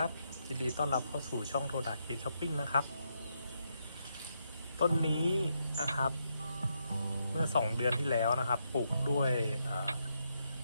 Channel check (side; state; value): both; inverted; correlation -0.80